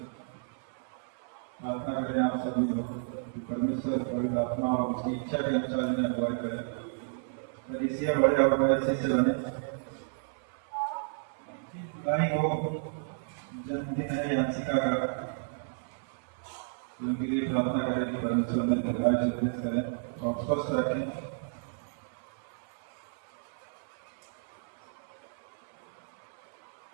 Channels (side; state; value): left; silent; 56 dB below the other